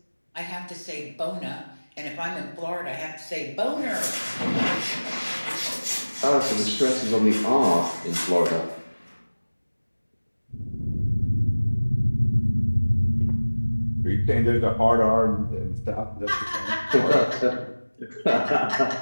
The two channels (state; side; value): inverted; both; correlation -1.00